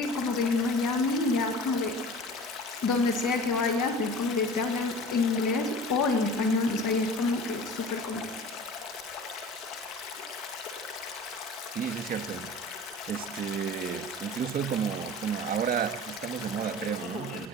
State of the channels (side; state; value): both; normal; correlation 0.40